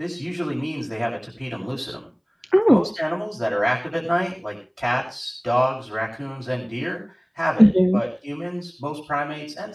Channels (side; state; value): both; identical; correlation 1.00